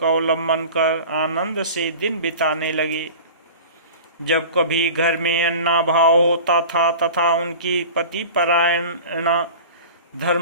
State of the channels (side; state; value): both; inverted; correlation -0.39